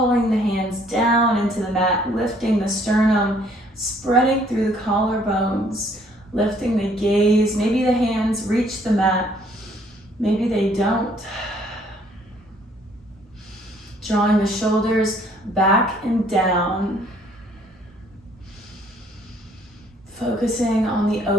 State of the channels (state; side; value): normal; both; correlation 0.62